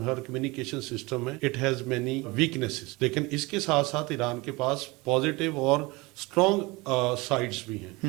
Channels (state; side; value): quieter; left; 23.8 dB